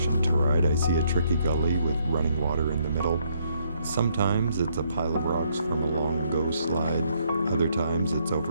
to ride, I see a tricky gully with running water in the middle. Sometimes it's a pile of rocks from a long-ago slide. Other times it's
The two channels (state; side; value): inverted; both; correlation -0.71